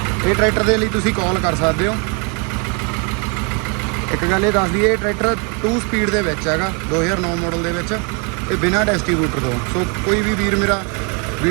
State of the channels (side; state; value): left; quieter; 35.0 dB